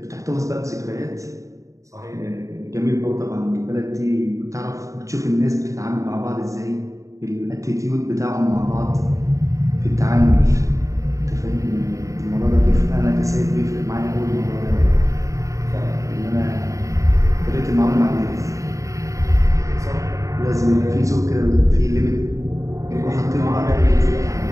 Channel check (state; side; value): late; left; 0.16 ms